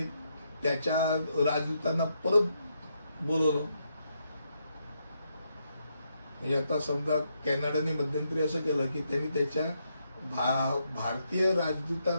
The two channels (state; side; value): inverted; both; correlation -0.79